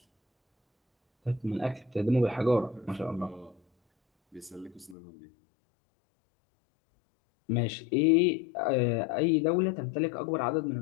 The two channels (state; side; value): drops out; right; at 5.0 s